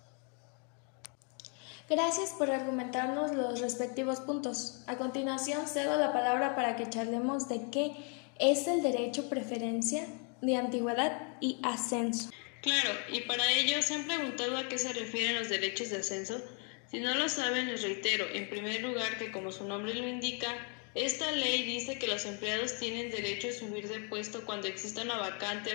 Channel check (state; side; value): quieter; right; 38.2 dB